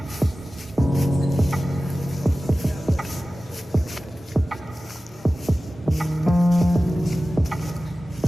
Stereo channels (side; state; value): both; normal; correlation 0.96